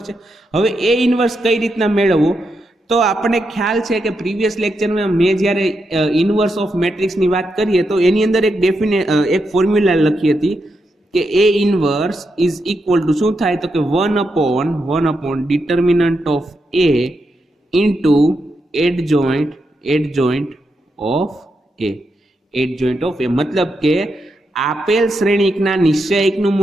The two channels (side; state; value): both; normal; correlation 0.84